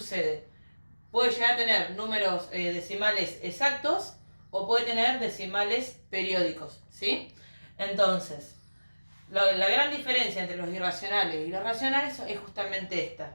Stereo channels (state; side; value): inverted; both; correlation -1.00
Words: Puede llegar a tener números decimales exactos o puede tener decimales periódicos, ¿sí? Entonces, la gran diferencia entre los irracionales y los racionales es justamente esta,